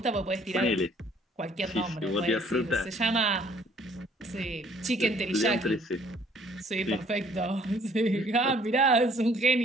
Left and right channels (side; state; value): both; normal; correlation 0.59